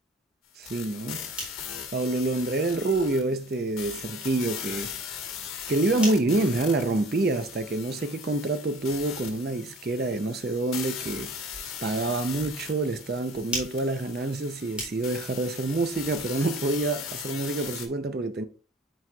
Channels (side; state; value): both; normal; correlation 0.47